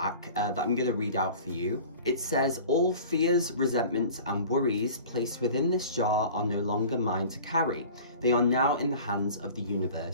that I'm gonna read out for you. It says, all fears, resentments, and worries placed within this jar are no longer mine to carry. They are now in the hands of the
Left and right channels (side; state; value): both; inverted; correlation -0.42